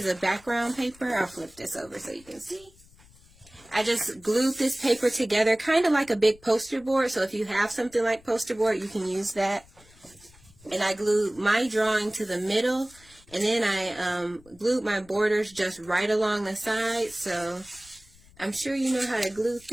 of background paper. I'll flip this over so you can see. I just glued this paper together, kind of like a big poster board. So if you have something like poster board, you can use that. And I glued my drawing to the middle. And then I glued my borders just right along the side. So I'm sure you know how to glue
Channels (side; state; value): left; noise; rumble, 26 dB below the sound